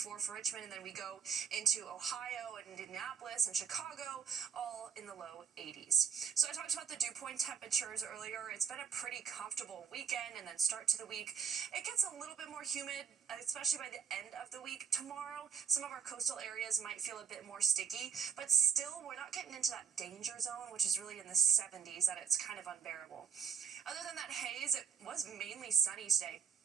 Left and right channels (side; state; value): left; quieter; 7.0 dB